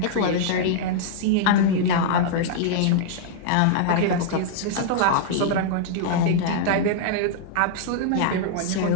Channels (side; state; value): both; different; correlation -0.01